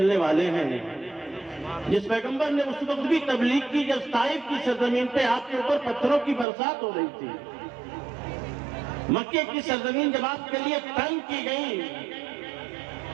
والے ہیں. جس پیغمبر نے اس وقت بھی تبلیغ کی جب طائف کی سرزمین پہ آپ کے اوپر پتھروں کی برسات ہو رہی تھی، مکے کی سرزمین جب آپ کے لیے تنگ کی گئی،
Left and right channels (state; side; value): drops out; left; at 6.5 s